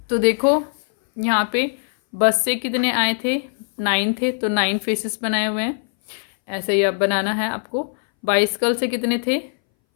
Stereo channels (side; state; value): right; silent; 62 dB below the other